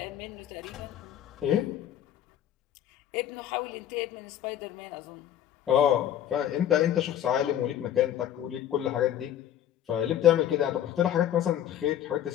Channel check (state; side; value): quieter; right; 10.9 dB